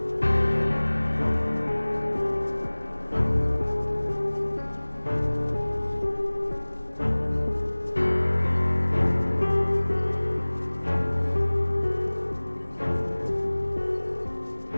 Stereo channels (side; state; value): both; inverted; correlation -1.00